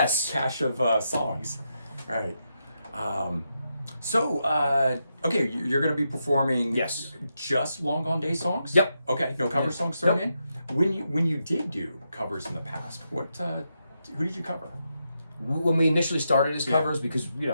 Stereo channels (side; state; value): both; inverted; correlation -0.84